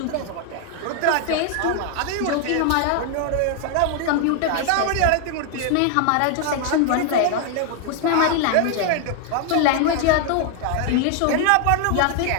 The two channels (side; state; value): both; different; correlation 0.00